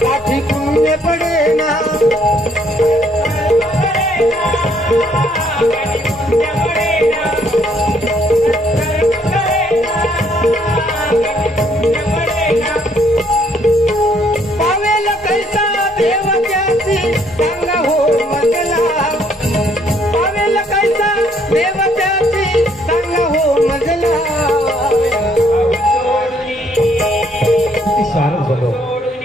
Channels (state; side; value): normal; both; correlation 0.67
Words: गाठी पुण्य पडेना. पावेल कैसा देव त्याची सांगा हो मजला. पावेल कैसा देव त्याची सांगा हो मजला. शारद बोलो